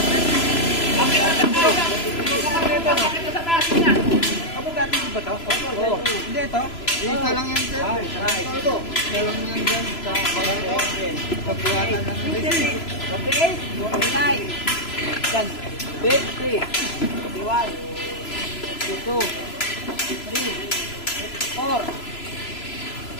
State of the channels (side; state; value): right; late; 3.0 ms